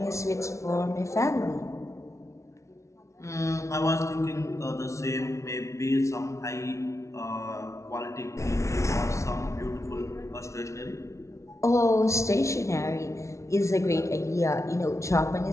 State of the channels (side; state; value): right; late; 0.14 ms